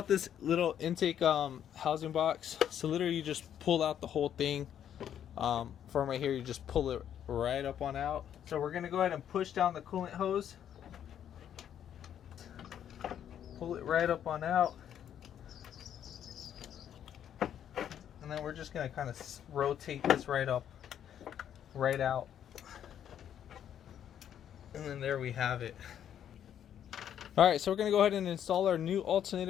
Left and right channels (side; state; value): right; quieter; 9.7 dB